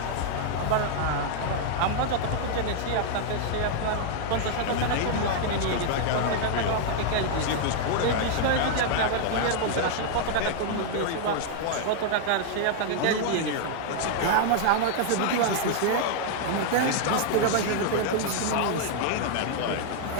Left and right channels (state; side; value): different; both; correlation -0.01